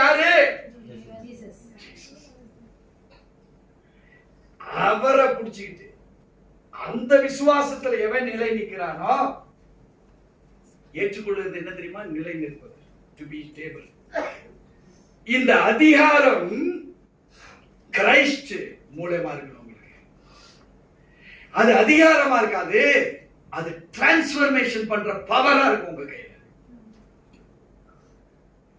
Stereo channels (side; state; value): both; identical; correlation 1.00